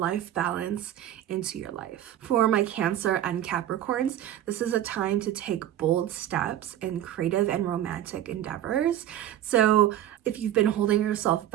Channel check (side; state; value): left; quieter; 11.9 dB